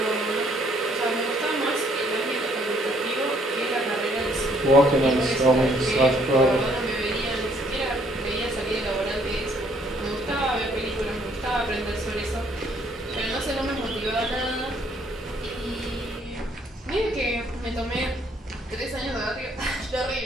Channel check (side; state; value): both; normal; correlation 0.65